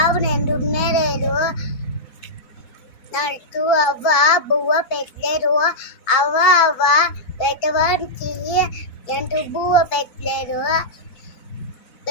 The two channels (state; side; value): late; right; 4.4 ms